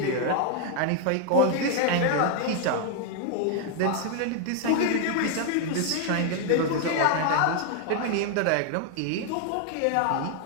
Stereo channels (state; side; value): different; both; correlation 0.00